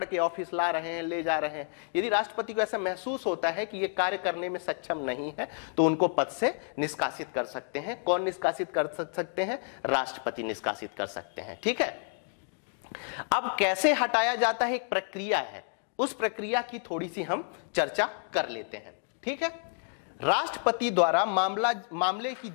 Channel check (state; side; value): silent; right; 58 dB below the other